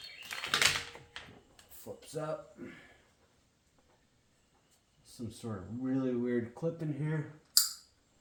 Flips up. Some sort of really weird clip in here.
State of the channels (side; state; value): both; identical; correlation 1.00